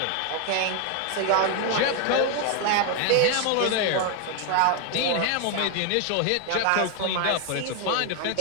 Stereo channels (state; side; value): different; both; correlation 0.01